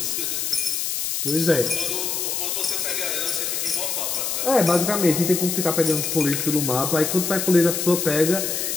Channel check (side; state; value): left; noise; hiss, 1 dB below the sound